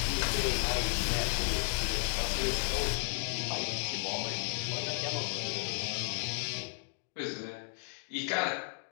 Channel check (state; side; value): silent; right; 55 dB below the other